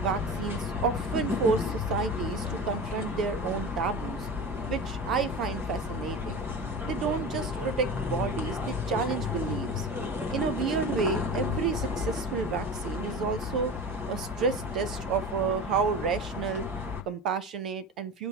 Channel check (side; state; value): both; normal; correlation 0.31